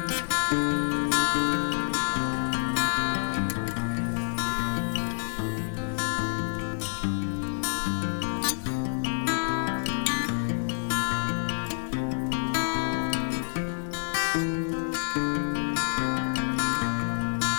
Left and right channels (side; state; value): right; silent; 59 dB below the other